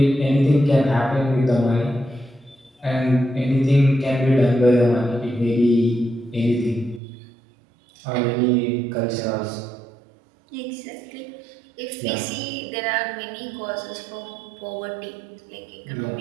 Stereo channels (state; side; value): drops out; left; at 7.0 s